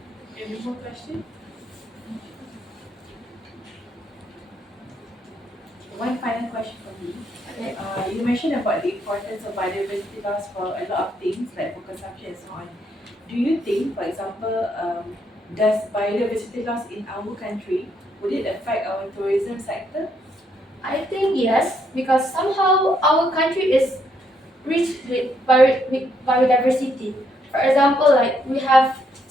Any more question? One final question from me. Okay. You mentioned about the importance of biodiversity loss for a lot of things like for consumption and so on. Do you think, for example, does biodiversity loss in our country, would it affect our tourism sector? I think yes, because somehow our country is rich with biodiversity. For example, like we have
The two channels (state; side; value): normal; both; correlation 0.74